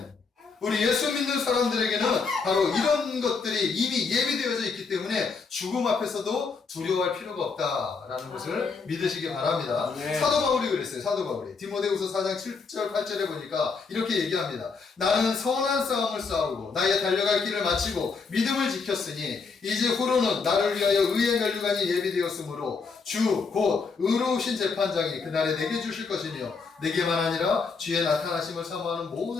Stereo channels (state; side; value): quieter; right; 4.9 dB